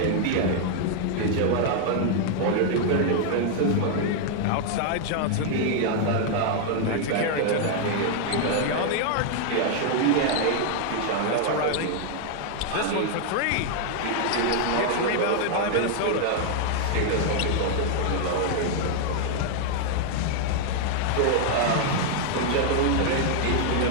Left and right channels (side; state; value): both; different; correlation 0.00